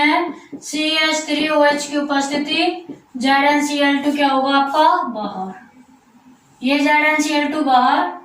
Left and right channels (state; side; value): identical; both; correlation 1.00